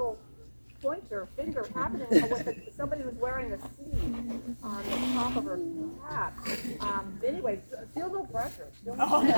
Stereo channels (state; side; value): inverted; both; correlation -1.00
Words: pointer finger happening with somebody who's wearing a C on the top of her hat. Anyway, feel no pressure.